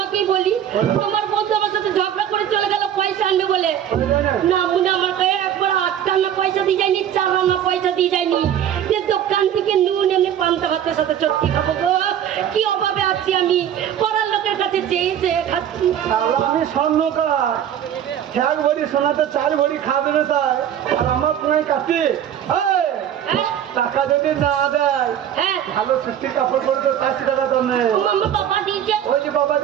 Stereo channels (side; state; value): left; quieter; 9.9 dB